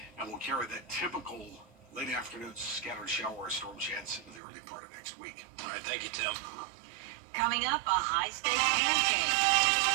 and we'll carry that typical late afternoon scattered shower or storm chance into the early part of next week. All right, thank you, Tim. Coming up, a high-stakes pancake.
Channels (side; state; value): left; drops out; at 4.4 s